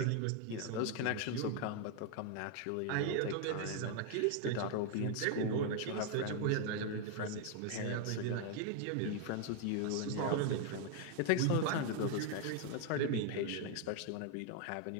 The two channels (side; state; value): both; different; correlation 0.00